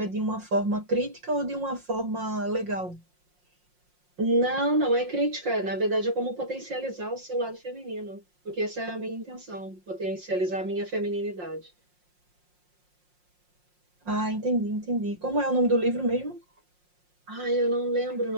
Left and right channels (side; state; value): left; late; 5.6 ms